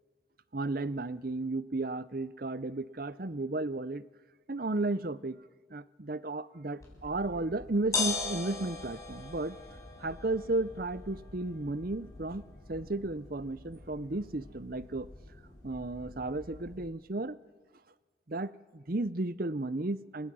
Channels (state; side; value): normal; both; correlation 0.40